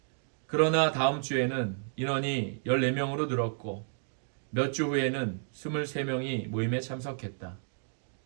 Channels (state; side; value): silent; left; digital silence